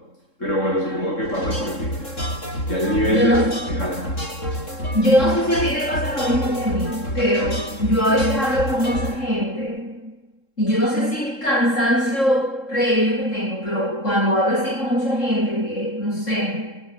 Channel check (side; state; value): right; late; 3.7 ms